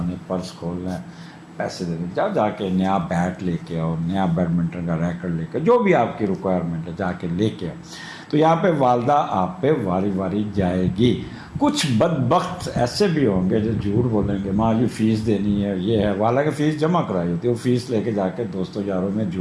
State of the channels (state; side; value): identical; both; correlation 1.00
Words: نے پرس کھولنا ہے، پیسے دینے، جا کے نیا بیٹ لے کے آؤ، نیا بیڈمنٹن کا ریکٹ لے کے، جو بھی آپ کی ریکوائرمنٹ ہے جا کے لے کے آؤ۔ تو یہاں پہ والدہ آپ پہ واری واری جائے گی۔ کچھ بدبخت ایسے بھی ہوں گے جو جھوٹ بولیں گے، ماں جی فیس دینی ہے، یہ ہے، حالانکہ فیس جمع کرائی ہوتی ہے، وہ فیس لے کے جا کے دوستوں یاروں میں